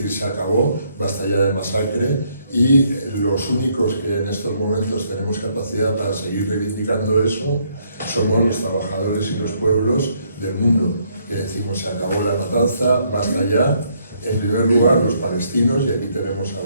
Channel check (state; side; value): inverted; both; correlation -0.70